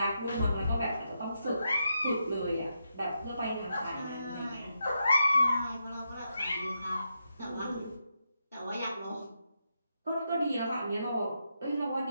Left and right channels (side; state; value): both; inverted; correlation -0.84